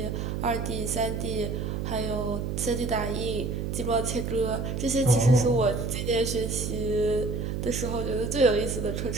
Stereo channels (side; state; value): right; noise; hum, 3 dB below the sound